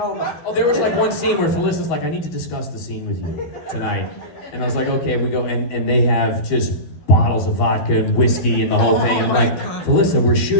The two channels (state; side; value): late; right; 12 ms